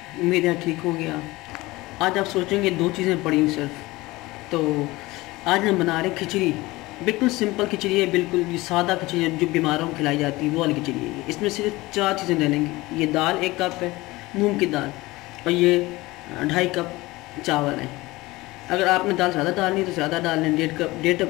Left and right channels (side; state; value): right; quieter; 20.4 dB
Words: उम्मीद है ठीक हो गया। आज आप सोचेंगे दो चीज़ें पड़ी सिर्फ। तो आज हम बना रहे हैं खिचड़ी। बिल्कुल सिंपल खिचड़ी है, बिल्कुल ये सादा खिचड़ी है जो बीमारों को खिलाई जाती है, वो वाली खिचड़ी है। इसमें सिर्फ चार चीज़ें डालेंगे। ये दाल 1 कप है, मूंग की दाल, और ये 2.5 कप चावल है। अगर आपने दाल ज़्यादा डालनी है तो ज़्यादा डाल लें,